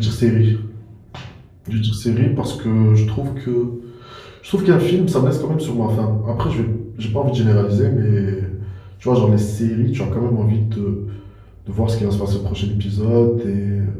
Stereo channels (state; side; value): identical; both; correlation 1.00